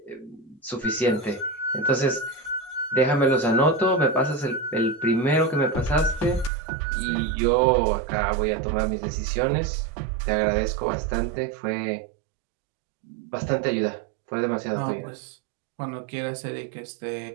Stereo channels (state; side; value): drops out; left; at 6.5 s